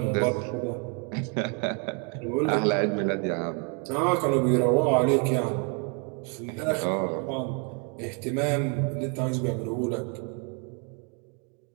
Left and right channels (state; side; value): quieter; left; 37.2 dB